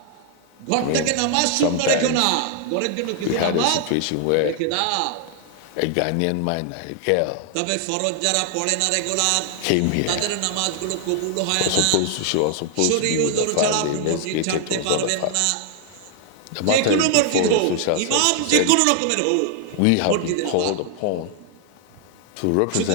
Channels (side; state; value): both; different; correlation 0.00